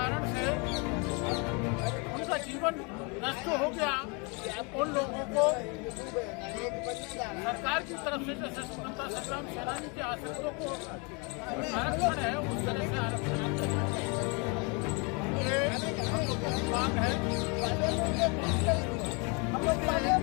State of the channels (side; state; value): right; quieter; 32.0 dB